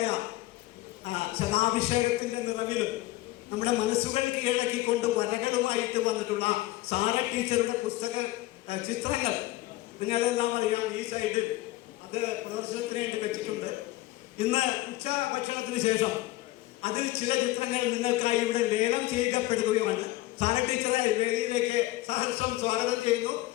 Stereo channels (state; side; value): quieter; right; 17.9 dB